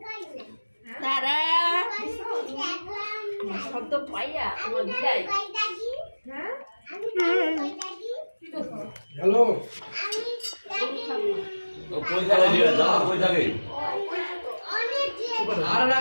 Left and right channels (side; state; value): both; inverted; correlation -1.00